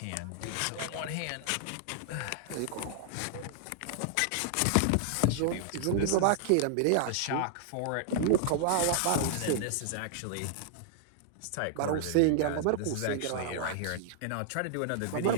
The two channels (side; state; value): both; different; correlation -0.01